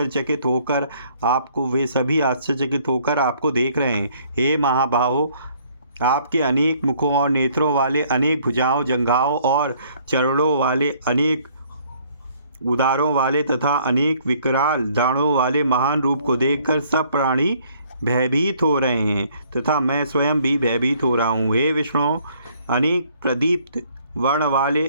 होकर आपको देख रहे हैं। हे महाबाहो, आपके अनेक मुखों और नेत्रों वाले, अनेक भुजाओं, जंघाओं और चरणों वाले, अनेक उदारों वाले तथा अनेक विकराल दाढ़ों वाले महान रूप को देखकर सब प्राणी भयभीत हो रहे हैं तथा मैं स्वयं भी भयभीत हो रहा हूँ। हे विष्णु, अनेक प्रदीप्त वर्ण वाले,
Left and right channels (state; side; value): inverted; both; correlation -0.62